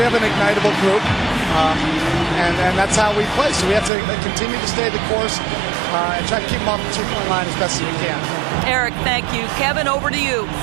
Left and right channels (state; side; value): drops out; left; at 3.9 s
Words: have an ignitable group, and that's how we play. So we have to continue to stay the course and try to keep them off the 2-point line as best as we can. Eric, thank you. Kevin, over to you.